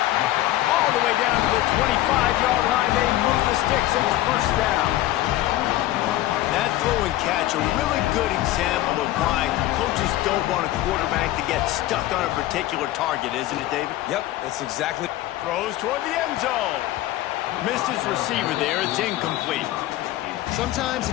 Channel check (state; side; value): quieter; right; 15.2 dB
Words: All the way down to the 25-yard line. They move the sticks and it's first down. That throw and catch, a really good example of why coaches don't want a quarterback to get stuck on a particular target, isn't it, David? Yep, that's exactly. Throw throws toward the end zone. Missed his receiver there. It's incomplete. Sometimes